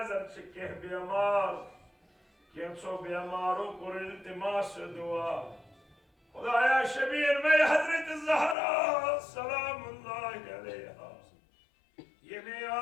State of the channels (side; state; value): right; drops out; at 8.6 s